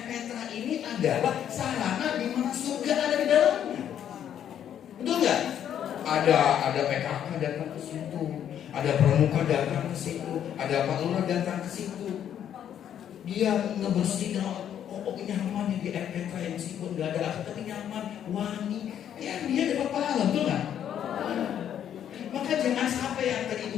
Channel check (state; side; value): quieter; right; 9.7 dB